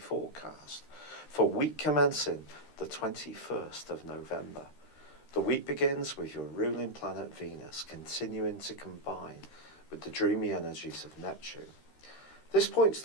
for week commencing the 21st of November. The week begins with your ruling planet Venus continuing to combine with the dreamy energies of Neptune. This points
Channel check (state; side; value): late; right; 13 ms